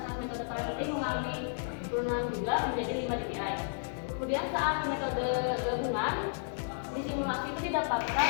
saat metode parasitik mengalami penurunan juga menjadi 5 dBi. Kemudian saat metode gabungan di simulasi itu didapatkan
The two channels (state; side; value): silent; right; digital silence